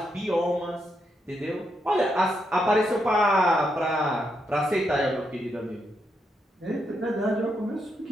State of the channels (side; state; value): both; normal; correlation 0.81